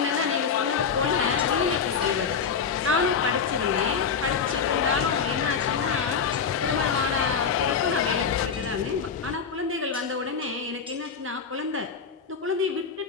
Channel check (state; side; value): quieter; right; 6.2 dB